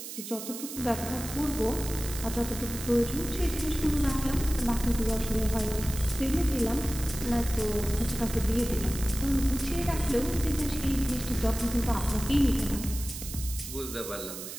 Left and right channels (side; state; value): right; noise; hiss, 9 dB below the sound